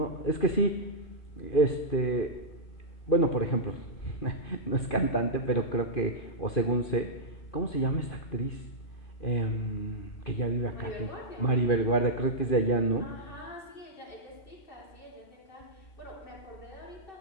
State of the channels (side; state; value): right; late; 2.5 ms